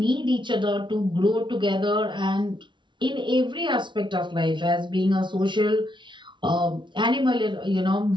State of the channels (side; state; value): left; late; 0.23 ms